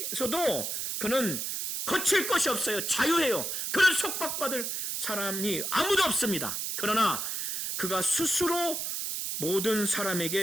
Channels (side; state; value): right; noise; hiss, 2 dB below the sound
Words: 그는 거칠 것이 없어요. 자유해요. 그는 속박받을 사람이 아무도 없습니다. 그러나 그가 스스로 모든